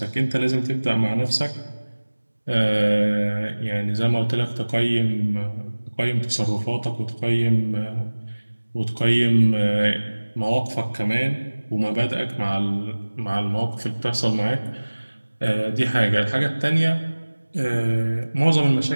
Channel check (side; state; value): both; inverted; correlation -1.00